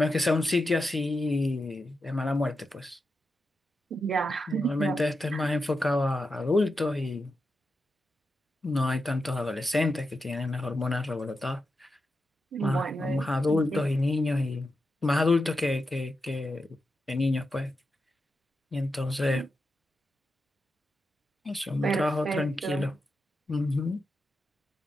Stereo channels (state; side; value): normal; both; correlation 0.88